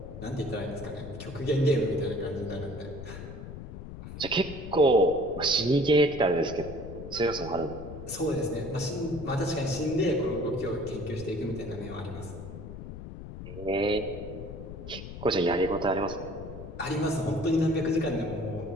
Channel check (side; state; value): left; noise; rumble, 11 dB below the sound